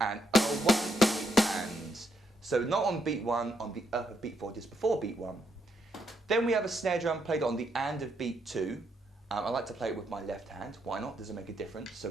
and O1, E, and. So not on beat 1, on the of beat 4, just before beat 1. Then we have a snare drum played on the and of beat 2. I like to play it with my left hand. Why not? Doesn't make a difference. So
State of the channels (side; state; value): both; normal; correlation 0.76